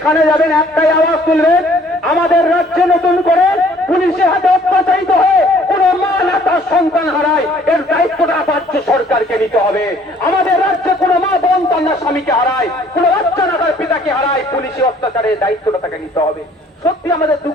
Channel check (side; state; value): both; normal; correlation 0.58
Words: যাবেন একটাই আওয়াজ তুলবেন, আমাদের রাজ্যে নতুন করে পুলিশের হাতে অত্যাচারিত হয়ে কোন মা না তার সন্তান হারায়, এর দায়িত্বটা রাজ্য সরকারকে নিতে হবে। আমাদের রাজ্যে কোন মা বোন তার না স্বামীকে হারায়, কোন বাচ্চা না তার পিতাকে হারায়, পুলিশের অত্যাচারের দায়িত্বটা তাকে নিতে হবে। সত্যি আমাদের